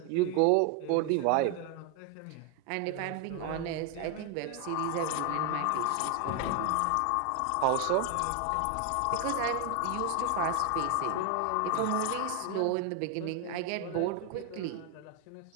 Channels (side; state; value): both; different; correlation 0.01